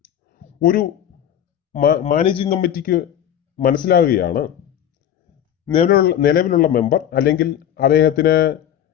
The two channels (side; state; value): right; quieter; 10.3 dB